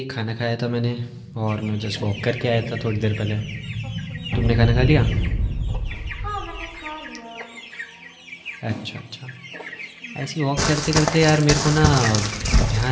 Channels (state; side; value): identical; both; correlation 1.00